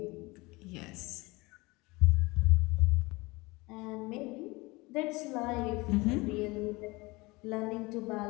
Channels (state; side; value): quieter; right; 23.5 dB